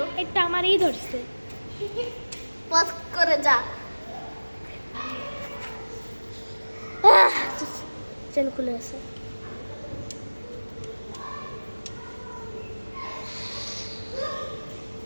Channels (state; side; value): inverted; both; correlation -1.00